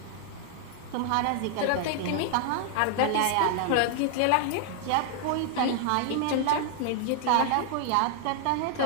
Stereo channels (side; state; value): both; different; correlation 0.00